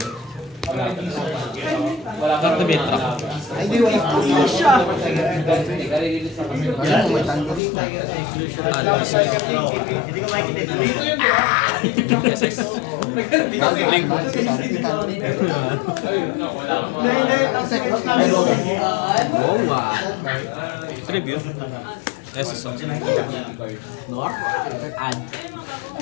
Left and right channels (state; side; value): drops out; right; at 7.6 s